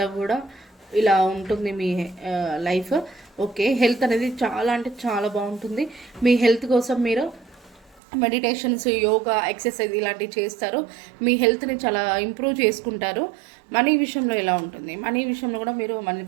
కూడా ఇలా ఉంటుంది మీ లైఫ్. ఓకే, హెల్త్ అనేది చాలా అంటే చాలా బాగుంటుంది. మీ హెల్త్ కోసం మీరు మెడిటేషన్స్, యోగా, ఎక్సర్సైజ్ ఇలాంటివి చేస్తారు. మీ హెల్త్ని చాలా ఇంప్రూవ్ చేసుకుంటారు. మనీ విషయంలో ఎలా ఉంటుంది? మనీ విషయంలో కూడా మీరు మనీ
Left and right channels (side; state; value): left; drops out; at 8.0 s